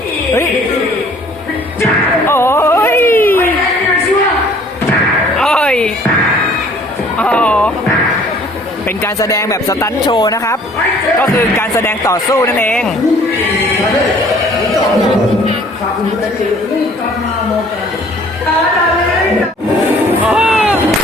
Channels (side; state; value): both; normal; correlation 0.55